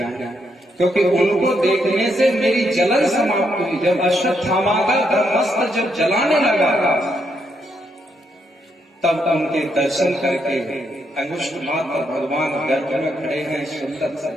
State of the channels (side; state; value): both; normal; correlation 0.78